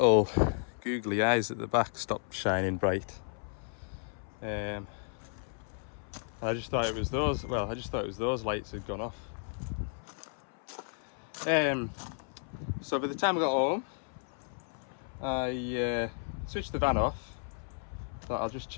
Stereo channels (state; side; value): silent; right; 56 dB below the other